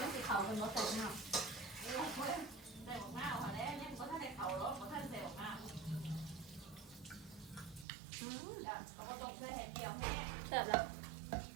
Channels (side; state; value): left; drops out; at 7.9 s